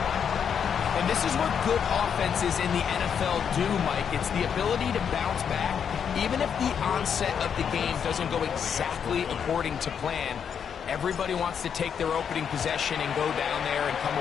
And this is what good offenses in the NFL do, Mike. It's the ability to bounce back, even if the onset of the game doesn't go exactly according to plan. Everybody wants to take their opening possession and go down there and come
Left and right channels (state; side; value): quieter; right; 7.5 dB